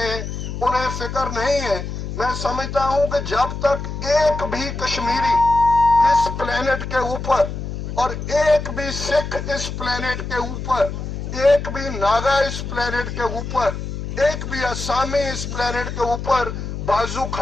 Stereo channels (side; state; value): left; noise; hum, 6 dB below the sound